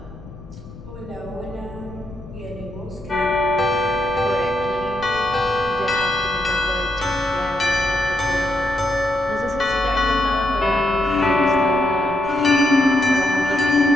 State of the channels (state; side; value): noise; left; rumble, 17 dB below the sound